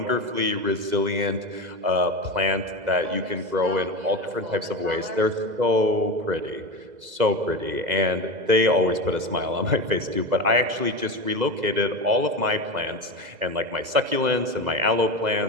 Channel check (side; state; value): left; late; 2.0 ms